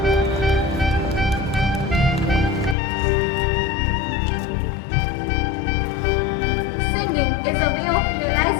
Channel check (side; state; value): right; drops out; at 2.8 s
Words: Singing is a way of